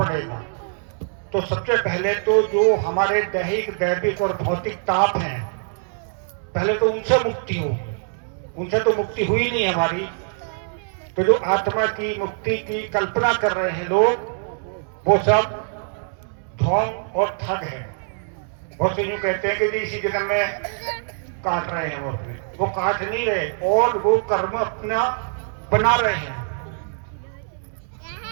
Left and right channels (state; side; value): silent; left; digital silence